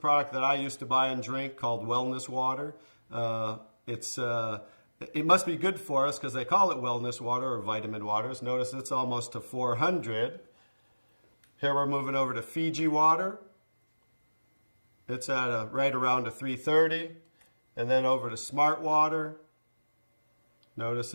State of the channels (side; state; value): both; inverted; correlation -1.00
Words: that I used to buy and drink called Wellness Water. It must be good for us because they call it wellness water or vitamin waters. Notice it's almost to 400. Here we're moving over to Fiji water. It's at right around a 330. And then over to Smart Water. Notice